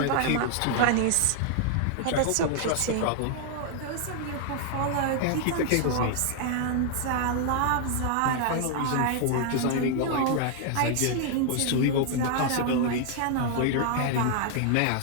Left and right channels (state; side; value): different; both; correlation 0.00